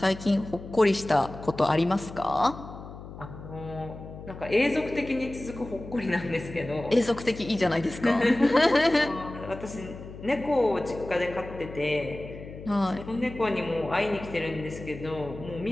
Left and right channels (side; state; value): left; noise; hum, 13 dB below the sound